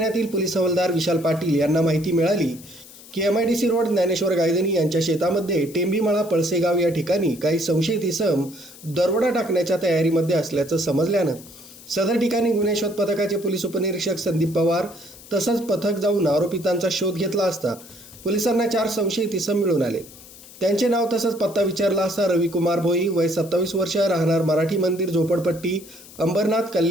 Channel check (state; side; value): noise; left; hiss, 19 dB below the sound